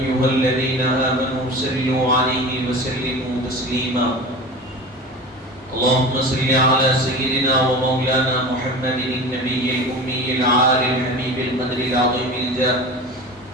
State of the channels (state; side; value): normal; both; correlation 0.33